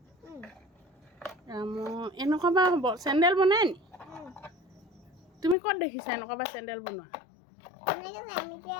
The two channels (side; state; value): right; drops out; at 5.6 s